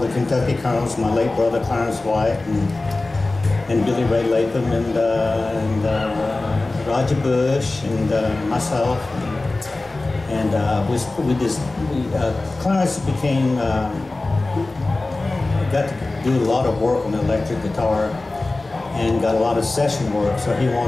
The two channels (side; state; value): right; quieter; 3.1 dB